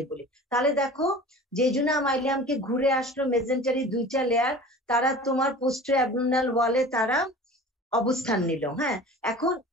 বলি। তাহলে দেখো জেজুনা মাইলিয়ামকে ঘুরে আসলো মেজেন্টারি দুইটা লেয়ার, তারা তোমার পোস্টার অ্যাবডোমিনাল ওয়ালে তারা অবস্থান নিল। হ্যাঁ, এখন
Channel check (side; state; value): both; normal; correlation 0.40